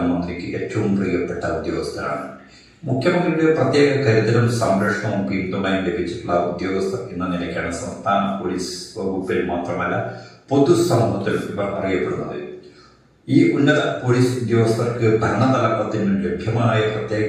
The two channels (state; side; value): identical; both; correlation 1.00